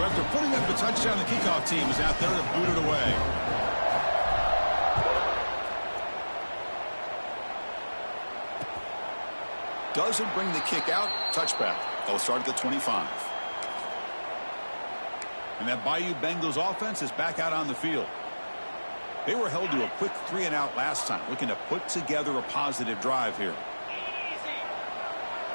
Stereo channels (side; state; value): both; inverted; correlation -1.00